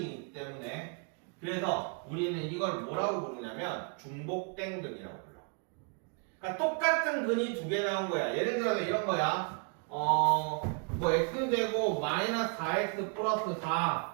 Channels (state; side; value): quieter; left; 37.0 dB